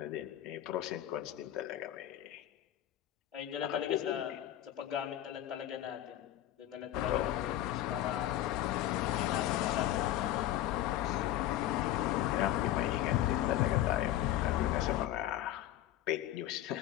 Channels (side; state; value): right; quieter; 13.1 dB